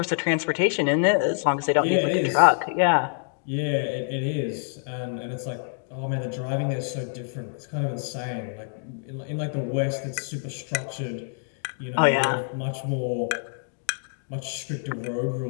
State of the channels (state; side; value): silent; right; digital silence